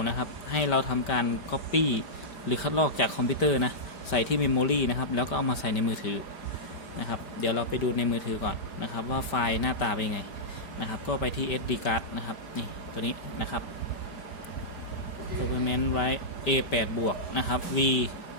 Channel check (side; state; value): right; late; 4.9 ms